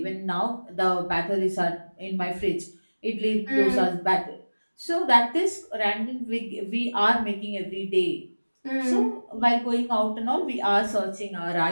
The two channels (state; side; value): inverted; both; correlation -1.00